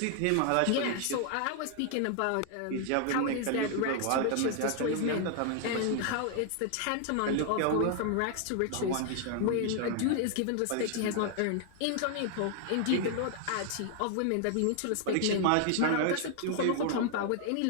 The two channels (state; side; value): different; both; correlation 0.00